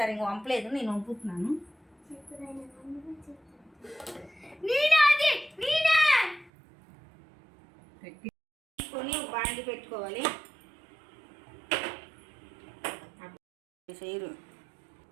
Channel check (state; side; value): drops out; left; at 6.5 s